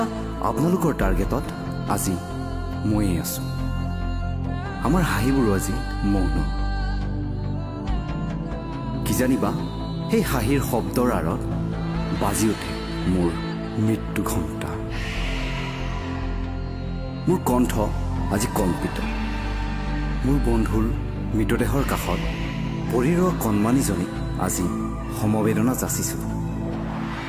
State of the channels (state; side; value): identical; both; correlation 1.00